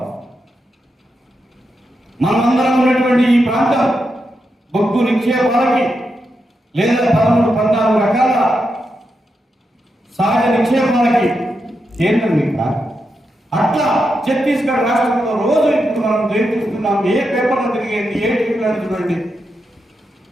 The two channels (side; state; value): both; normal; correlation 0.86